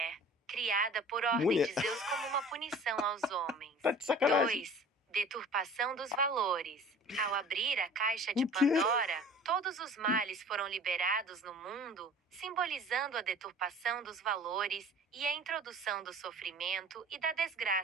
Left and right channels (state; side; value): normal; both; correlation 0.45